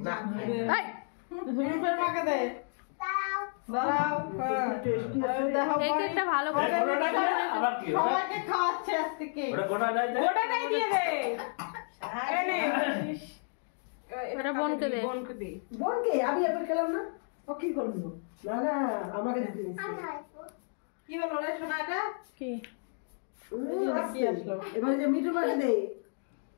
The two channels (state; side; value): silent; right; 57 dB below the other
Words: যা। এই, রূপের মাকে দে। দাঁড়াও। দেখো এই কেকটা ভালো করে আবার কি সবাইকে খাওয়াচ্ছে আজকে কেক। ওটা গোটাটাই দে, গোটাটাই দিয়ে দে। এই নে। এটা বোনকে দে। বোনকে দে। বোনকে আমি এবার খেলাম না, ও কি করবি? না না আমাকে দিতে কি হলো রে সোনা এটা? কি? কি আসলো এবার যে মিঠু মাকে দে।